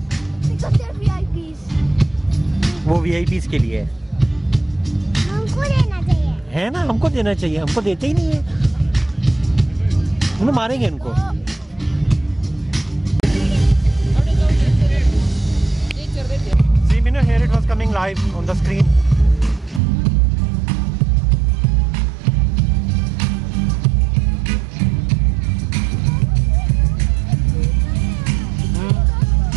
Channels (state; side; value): drops out; left; at 19.8 s